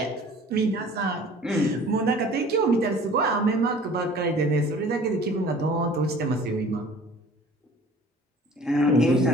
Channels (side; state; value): both; normal; correlation 0.48